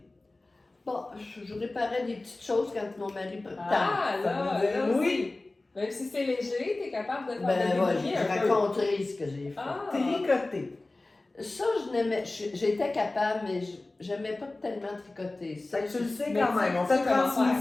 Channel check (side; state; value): right; quieter; 3.0 dB